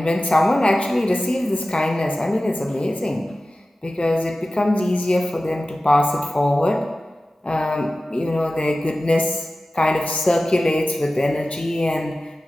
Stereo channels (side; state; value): both; normal; correlation 0.95